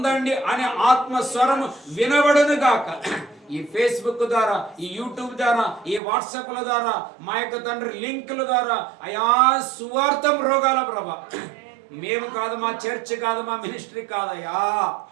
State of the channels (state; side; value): drops out; left; at 6.0 s